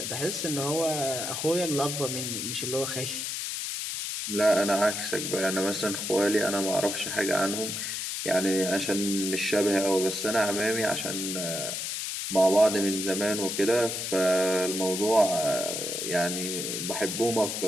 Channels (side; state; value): left; noise; hiss, 3 dB below the sound